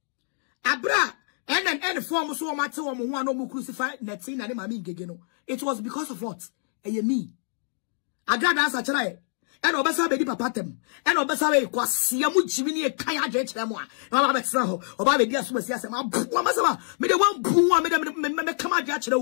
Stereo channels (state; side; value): silent; right; 61 dB below the other